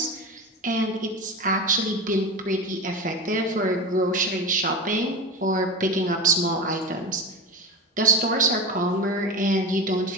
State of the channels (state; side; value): normal; both; correlation 0.25